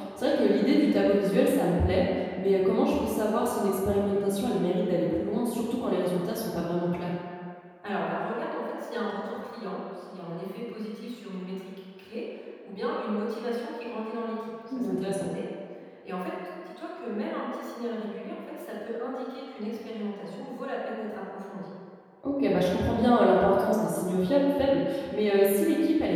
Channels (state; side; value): identical; both; correlation 1.00